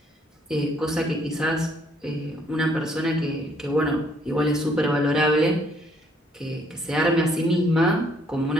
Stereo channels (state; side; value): normal; both; correlation 0.66